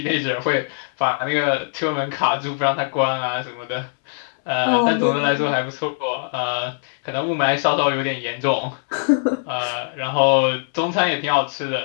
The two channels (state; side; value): silent; right; 65 dB below the other